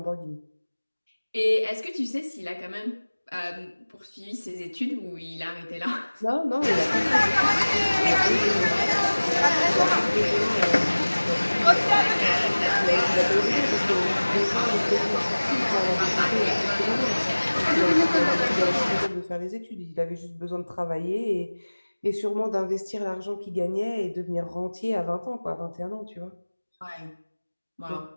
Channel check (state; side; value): inverted; both; correlation -1.00